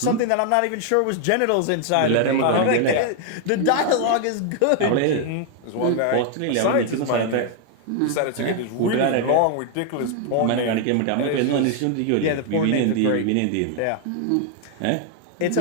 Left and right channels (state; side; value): different; both; correlation 0.00